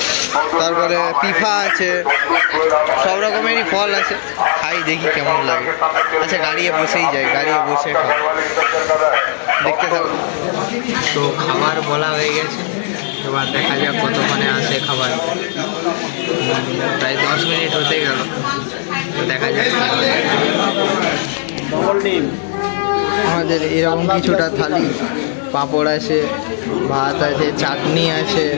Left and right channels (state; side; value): silent; right; digital silence